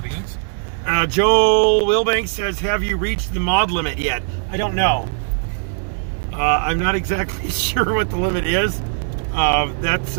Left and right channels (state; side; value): silent; left; 66 dB below the other